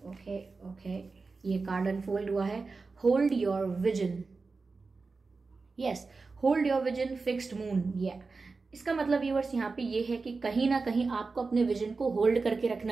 ये कार्ड अनफोल्ड हुआ है, hold your vision. Yes, hold your vision, fixed moon. इसका मतलब व्यूअर्स यहाँ पे ये है कि कहीं ना कहीं आपको अपने विजन को होल्ड करके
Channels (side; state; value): left; quieter; 4.1 dB